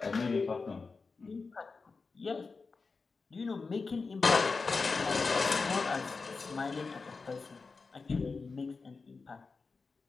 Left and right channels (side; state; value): right; quieter; 4.4 dB